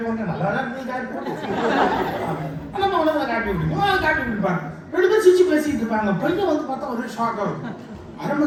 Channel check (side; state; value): both; identical; correlation 1.00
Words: ஒன்று நல்லா தான் இருக்கு காட்டி போட்டு நம்ம உடனே காட்டி விட்டுருக்கோம், காட்டி விட்டுருப்பாங்க. 2 பேரும் சிரிச்சு பேசிட்டு இருப்பாங்க. பையன் வந்து பார்த்தா ஒரே ஷாக் ஆகும். 1/2